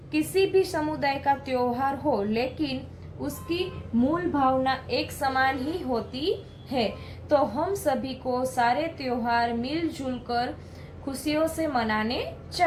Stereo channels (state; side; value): identical; both; correlation 1.00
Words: किसी भी समुदाय का त्योहार हो, लेकिन उसकी मूल भावना एक समान ही होती है। तो हम सभी को सारे त्योहार मिलजुल कर खुशियों से मनाने